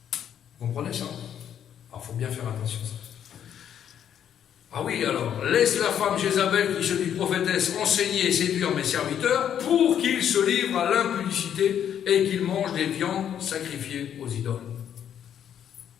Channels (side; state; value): right; quieter; 9.4 dB